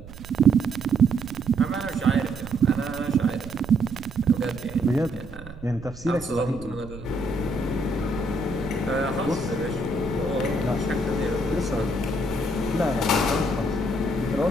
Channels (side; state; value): right; noise; rumble, 15 dB below the sound